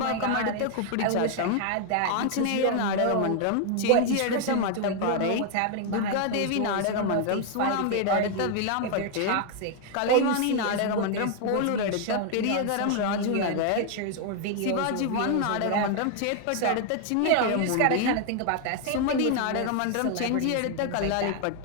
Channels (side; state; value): both; different; correlation 0.00